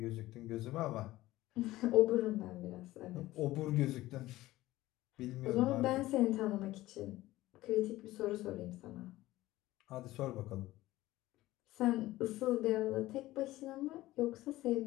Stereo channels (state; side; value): quieter; right; 16.9 dB